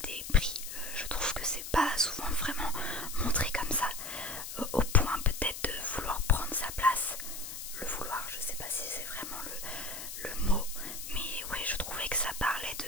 pris. Je trouve que c'est pas souvent vraiment montré comme ça, au point peut-être de vouloir prendre sa place. Le vouloir, je sais pas si c'est vraiment le mot, mais ouais, je trouvais que ça parlait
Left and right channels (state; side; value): noise; left; hiss, 8 dB below the sound